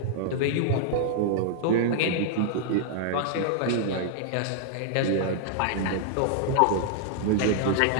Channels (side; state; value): both; different; correlation -0.01